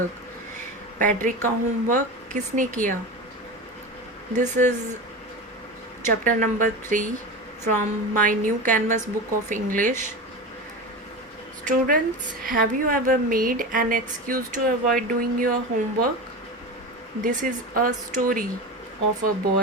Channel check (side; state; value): both; normal; correlation 0.25